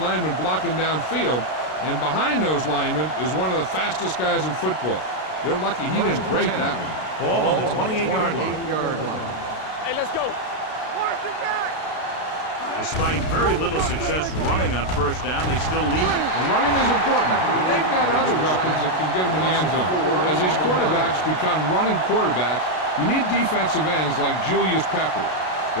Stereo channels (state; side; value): late; right; 32 ms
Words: blocking downfield, and behind those linemen is one of the fastest guys in football. They're lucky he didn't break that one. Ball on the 28-yard line. Hey, let's go. Watch it back. Despite very little success running on 1st down, they still lead. And running is important, but they've got other weapons that can get them in the end zone. As these quarterbacks become running quarterbacks, you need defensive ends like Julius Peppers.